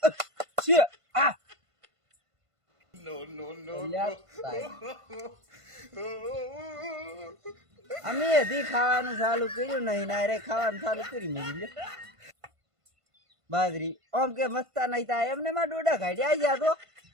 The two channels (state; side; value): late; left; 1.5 ms